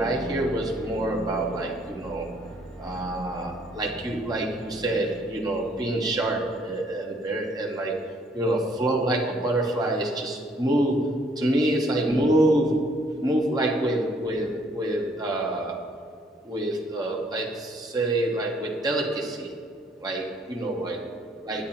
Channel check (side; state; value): both; normal; correlation 0.64